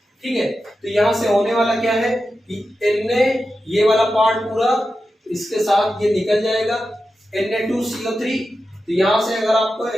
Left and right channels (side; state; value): both; normal; correlation 0.91